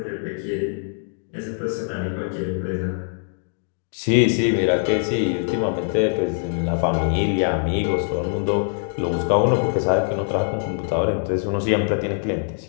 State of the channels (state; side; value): silent; right; digital silence